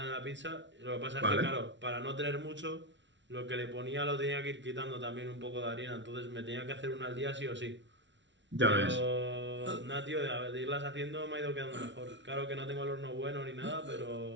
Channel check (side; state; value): left; late; 0.53 ms